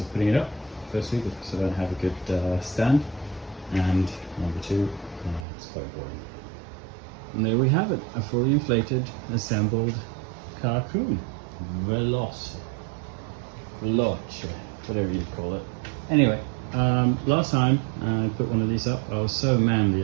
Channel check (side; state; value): left; drops out; at 5.5 s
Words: putting it up, firstly, because I don't have a good stand, and number two, it's quite boring. And there we have it, a fully inflated, assembled Carcoon Veloce, whatever you call it. Anyway, last time I put one of these up, I was so manly